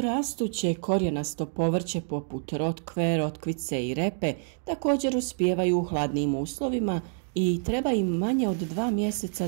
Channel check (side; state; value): left; silent; digital silence